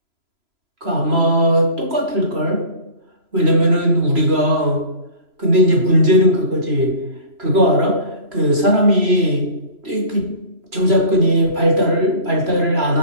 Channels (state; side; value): late; left; 3.0 ms